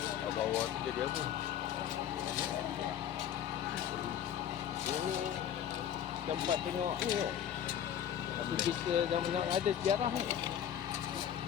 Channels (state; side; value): quieter; right; 9.8 dB